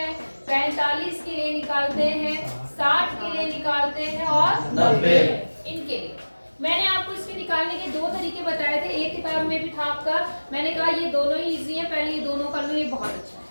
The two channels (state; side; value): inverted; both; correlation -1.00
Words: 45 के लिए निकालते हैं, 60 के लिए निकालते हैं और 90 इनके लिए। मैंने आपको इसके निकालने के दो तरीके बताए थे, एक किताब में भी था आपका, मैंने कहा ये दोनों ही इजी है, पहले ये दोनों कर लो, ये बहुत अच्छा है।